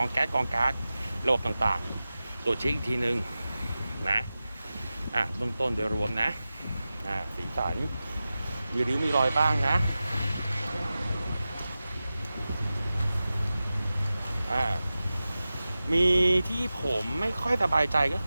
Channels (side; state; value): both; inverted; correlation -0.95